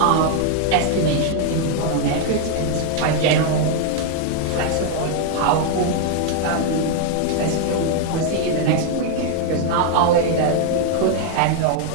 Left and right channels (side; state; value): both; different; correlation 0.00